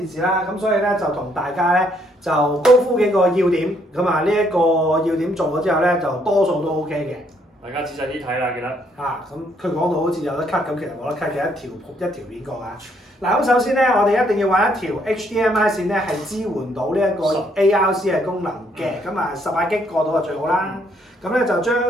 視啦，咁所以咧就同大家咧就高呼幾個要點，咁啊呢一個要點做咗之後咧，就多數都 OK 嘅。大家仔細啲睇啦，記得。咁佢講到好似有得 cut 咁，其實冇得 cut 嘅一條片過啊。嗱，咁首先咧，我哋一定要揾一條 HDMI 線咧係支援到呢一個 ARC 嘅功能嘅，咁啊18G 過到就最好啦。咁咧就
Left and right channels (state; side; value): normal; both; correlation 0.69